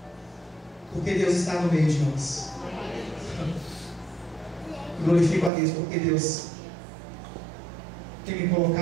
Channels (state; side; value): drops out; left; at 5.5 s